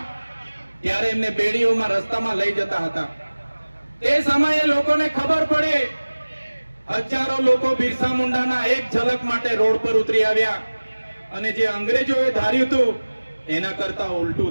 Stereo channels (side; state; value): both; inverted; correlation -1.00